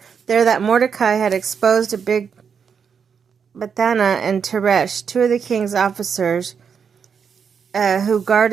that Mordecai had exposed a big Bethana and Teresh, two of the king's officers who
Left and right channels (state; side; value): quieter; left; 6.7 dB